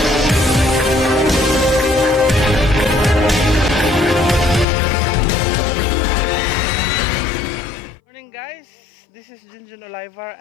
Morning guys, this is Junjun Oliver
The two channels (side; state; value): right; drops out; at 4.7 s